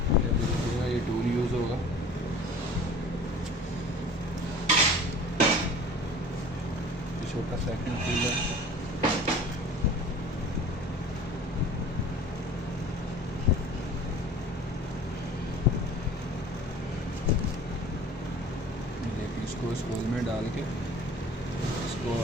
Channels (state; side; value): normal; both; correlation 0.44